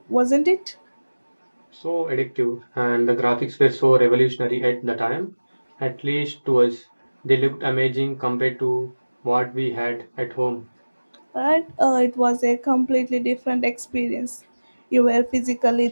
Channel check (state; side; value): inverted; both; correlation -1.00